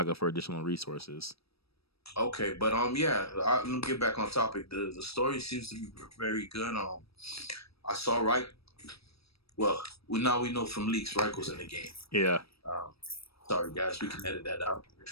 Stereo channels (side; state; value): right; late; 0.78 ms